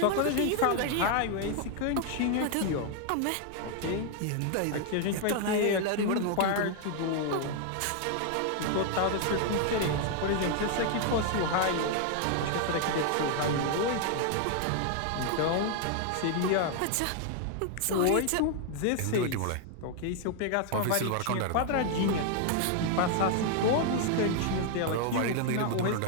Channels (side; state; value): both; different; correlation 0.00